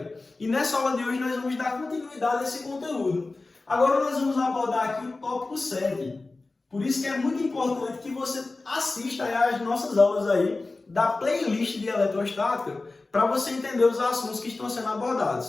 E nessa aula de hoje nós vamos dar continuidade a esse conteúdo. Agora nós vamos abordar aqui o tópico 7. Por isso que é muito importante que você assista às nossas aulas aí da playlist de eletrostática para você entender os assuntos que estão sendo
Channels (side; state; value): right; quieter; 3.4 dB